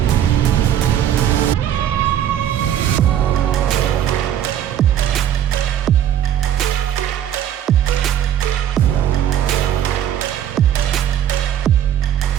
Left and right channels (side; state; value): left; quieter; 10.6 dB